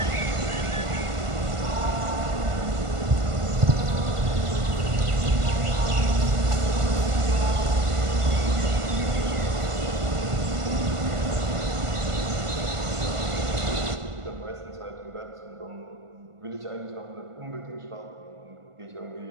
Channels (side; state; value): left; late; 1.5 ms